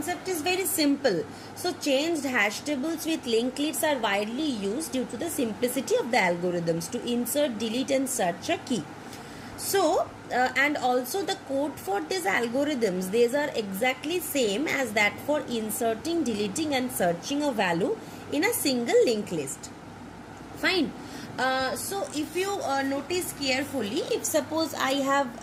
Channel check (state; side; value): identical; both; correlation 1.00